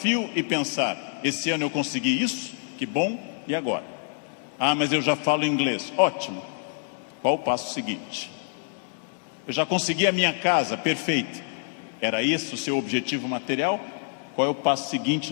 e pensar: esse ano eu consegui isso, que bom, e agora? Ah, mas eu já falo inglês. Ótimo. Qual o passo seguinte? Eu já consegui a minha casa, perfeito. Era esse o seu objetivo material? Qual é o passo seguinte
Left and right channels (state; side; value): silent; right; 61 dB below the other